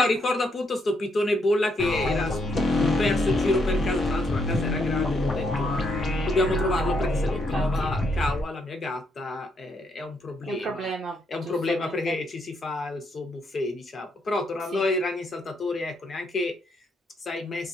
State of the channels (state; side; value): normal; both; correlation 0.76